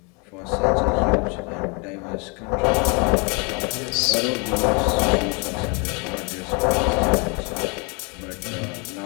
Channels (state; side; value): quieter; right; 32.0 dB